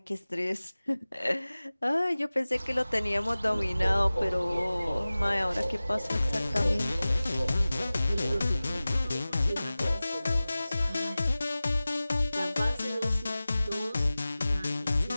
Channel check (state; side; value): inverted; both; correlation -0.97